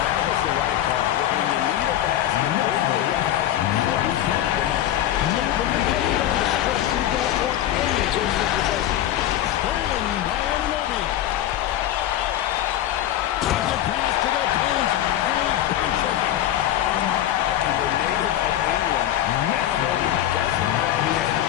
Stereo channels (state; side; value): quieter; right; 12.3 dB